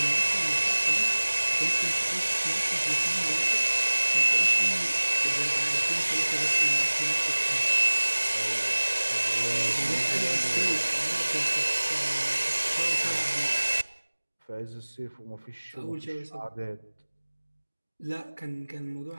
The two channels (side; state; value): both; inverted; correlation -1.00